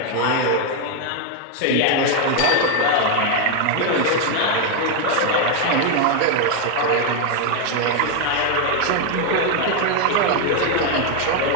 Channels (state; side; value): different; both; correlation 0.01